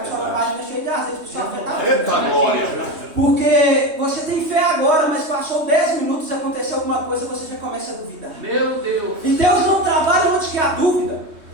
sua página cheia de azeite, porque sua fé está Eita glória! Porque você tem fé agora, mas passou 10 minutos e aconteceu alguma coisa, você já começa a duvidar. Meu Deus. E Deus não trabalha onde que há dúvida,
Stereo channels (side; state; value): left; late; 3.2 ms